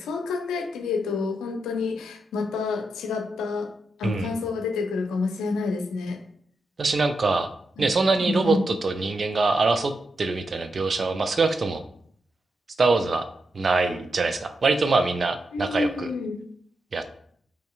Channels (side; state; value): both; normal; correlation 0.85